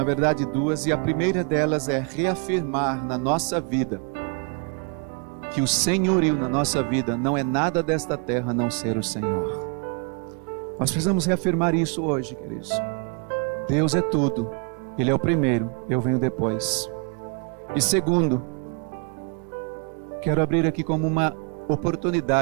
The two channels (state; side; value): quieter; left; 36.4 dB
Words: verdade duas, e a primeira delas é reafirmar na nossa vida, que o senhorio na nossa vida não é nada desta terra a não ser o Senhor. Nós precisamos reafirmar isso hoje, queridos. Deus é tudo, Ele é o primeiro, eu venho depois. E segundo, quero abrir aqui como uma